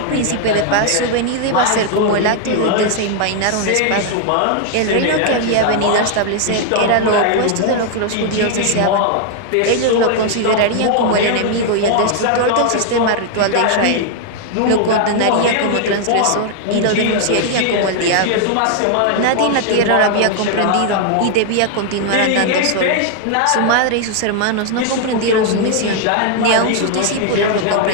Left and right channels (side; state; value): both; different; correlation 0.00